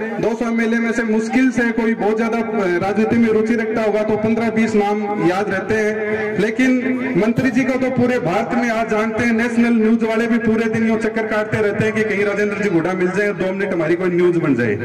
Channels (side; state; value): both; identical; correlation 1.00